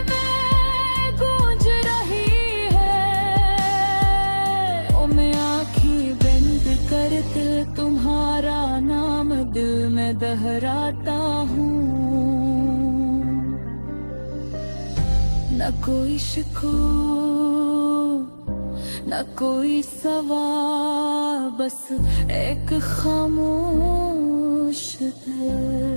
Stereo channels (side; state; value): both; inverted; correlation -1.00